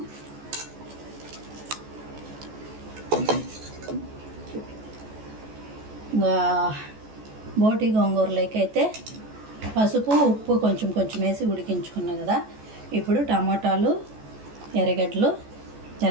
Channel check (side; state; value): left; late; 14 ms